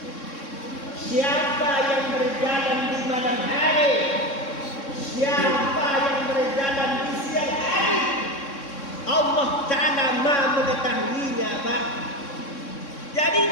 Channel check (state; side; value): late; right; 3.6 ms